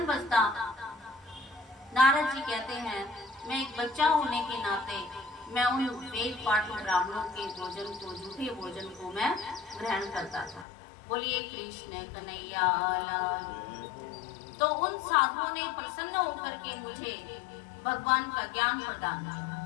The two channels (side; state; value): right; drops out; at 10.7 s